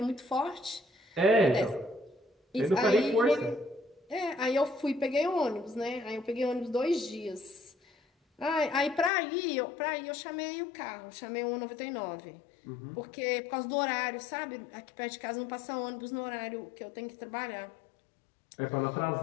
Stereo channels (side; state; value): right; drops out; at 9.1 s